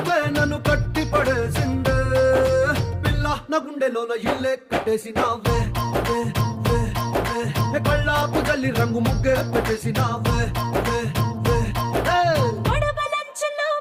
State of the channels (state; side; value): identical; both; correlation 1.00